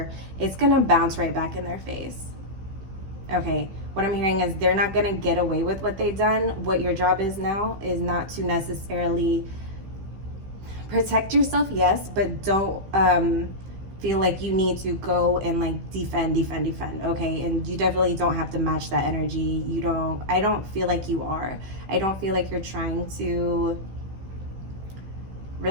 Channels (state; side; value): late; left; 15 ms